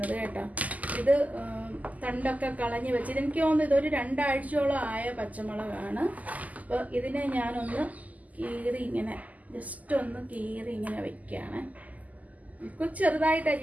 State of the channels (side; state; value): left; late; 0.077 ms